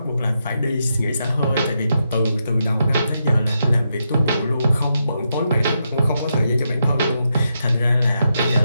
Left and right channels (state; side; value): inverted; both; correlation -0.83